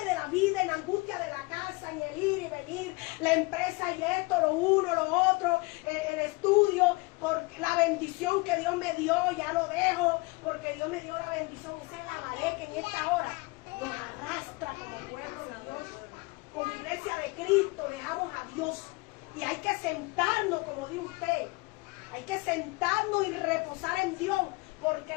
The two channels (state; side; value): quieter; right; 25.7 dB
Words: de la vida, en la angustia de la casa, en el ir y venir, la empresa y esto, lo uno, lo otro, el estudio, por la bendición que Dios me dio, ya lo dejo, porque Dios me dio la bendición. Esa es la marea que en esta hora nos arrastra como pueblo de Dios. Como iglesia de Cristo, dejamos a Dios. Y hay que sentarnos, como dice usted, hay que sentarnos y reposar en Dios, porque